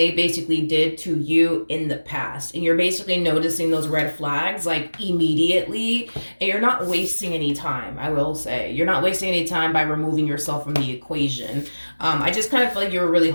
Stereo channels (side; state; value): both; inverted; correlation -1.00